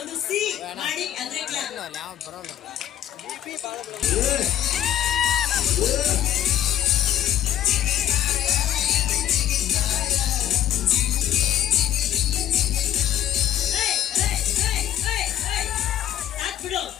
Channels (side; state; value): right; quieter; 11.5 dB